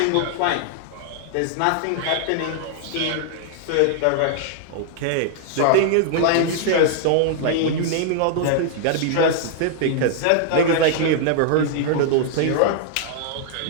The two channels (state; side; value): different; both; correlation -0.01